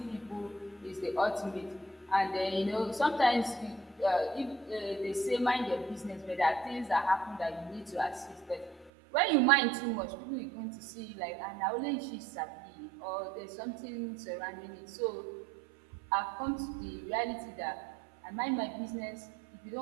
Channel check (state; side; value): drops out; left; at 8.9 s